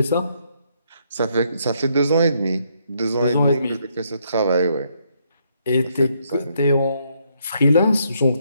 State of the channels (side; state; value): both; inverted; correlation -0.73